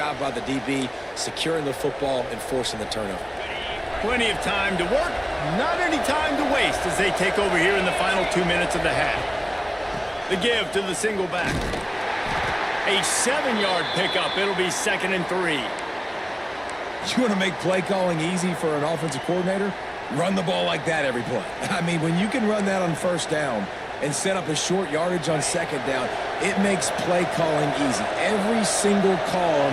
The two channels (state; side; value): identical; both; correlation 1.00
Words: by the DB securing the football and forcing the turnover. Plenty of time to work, not any time to waste as they take over here in the final 2 minutes of the half. The give to the single back. A 7-yard pickup. It'll be 2nd and 3. You want to make play calling easy for an offensive coordinator? Run the ball like that every play. I mean, when you can run that on first down and set up a short yardage on second down, it makes play calling easy. Every single call